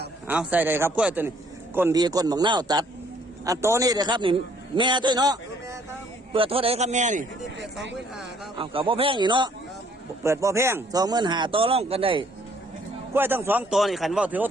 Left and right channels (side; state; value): both; normal; correlation 0.63